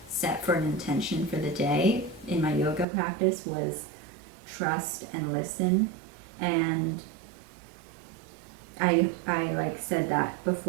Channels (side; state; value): left; drops out; at 2.9 s